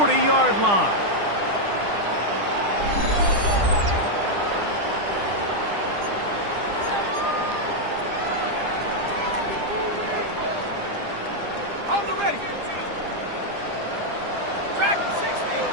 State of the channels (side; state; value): left; late; 9.9 ms